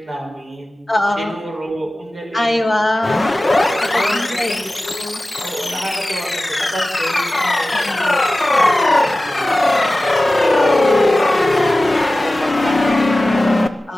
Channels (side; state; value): both; normal; correlation 0.96